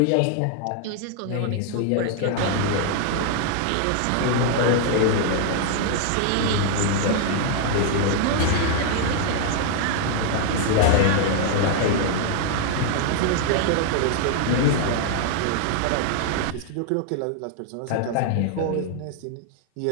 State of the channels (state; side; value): different; both; correlation 0.00